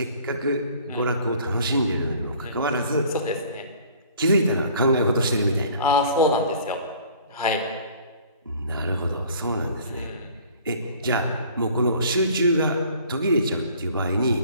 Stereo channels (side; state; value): both; inverted; correlation -0.51